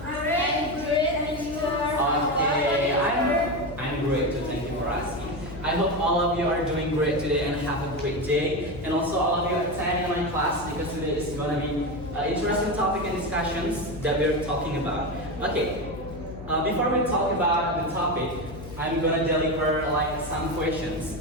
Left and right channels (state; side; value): noise; left; hum, 13 dB below the sound